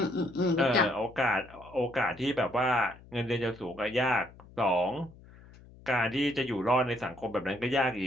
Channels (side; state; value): left; noise; hum, 22 dB below the sound